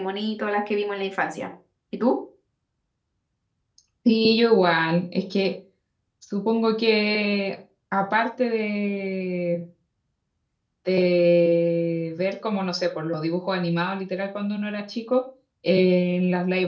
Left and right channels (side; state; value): both; identical; correlation 1.00